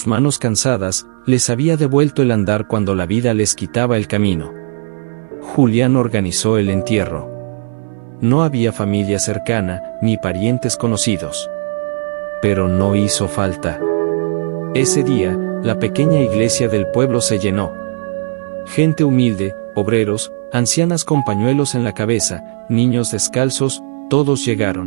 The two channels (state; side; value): silent; left; 58 dB below the other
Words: manos cansadas, les había devuelto el andar cuando la vida les quitaba el camino. Julián organizó el entierro. No había familia cercana, ni parientes conocidos. Pero no hizo falta. Ese día, la pequeña iglesia del pueblo se llenó. Gente humilde, obreros, ancianas con pañuelos en la cabeza, niños descalzos, todos